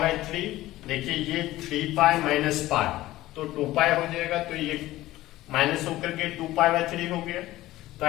3। देखिए ये 3 पाई माइनस पाई, तो 2 पाई हो जाएगा, तो ये माइनस होकर के 2 पाई बाई 3 हो गया। तो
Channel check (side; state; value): right; quieter; 16.3 dB